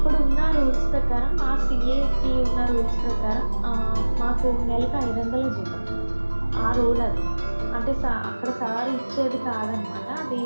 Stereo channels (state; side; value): inverted; both; correlation -1.00